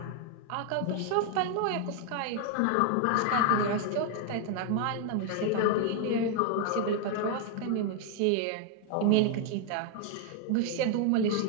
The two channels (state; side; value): different; both; correlation 0.00